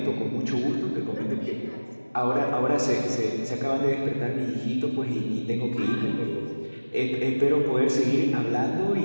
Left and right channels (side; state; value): both; inverted; correlation -1.00